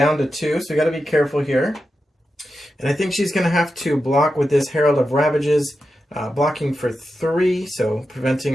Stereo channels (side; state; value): both; normal; correlation 0.90